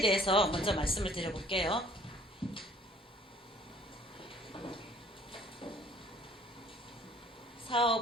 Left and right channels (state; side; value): normal; both; correlation 0.55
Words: 대해서 먼저 말씀을 드려볼게요.